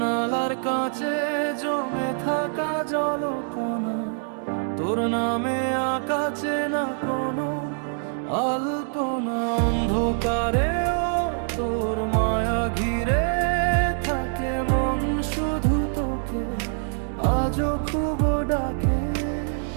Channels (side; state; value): left; silent; digital silence